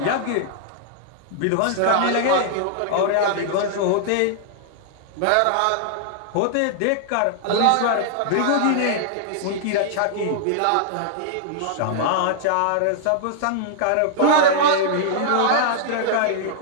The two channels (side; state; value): both; different; correlation -0.01